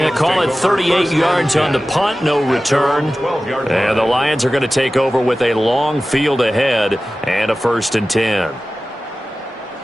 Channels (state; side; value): normal; both; correlation 0.95